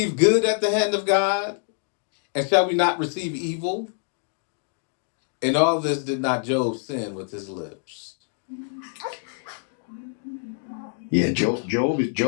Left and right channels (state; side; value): silent; right; digital silence